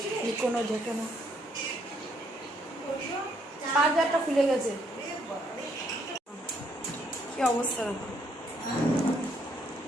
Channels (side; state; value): both; normal; correlation 0.70